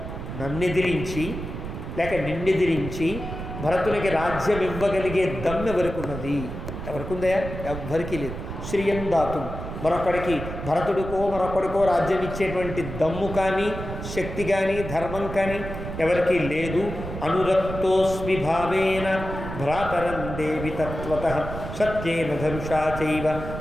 నన్నెదిరించి లేక నిన్నెదిరించి భరతునికి రాజ్యం ఇవ్వగలిగే దమ్ము ఎవరికున్నది? ఎవరికుందయా? ఎవ్వరికీ లేదు. శ్రియం దాతుం, మరొకడికి భరతుడికో మరొకడికో రాజ్యం ఇచ్చేటువంటి దమ్ము కానీ శక్తి కానీ ధర్మం కానీ ఎవరికీ లేదు. అనురక్తోస్మి భావేన భ్రాతరం దేవి తత్వతః సత్యేన ధనుషా చైవ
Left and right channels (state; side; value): noise; right; rumble, 8 dB below the sound